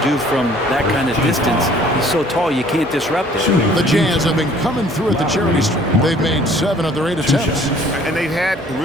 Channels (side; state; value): both; normal; correlation 0.56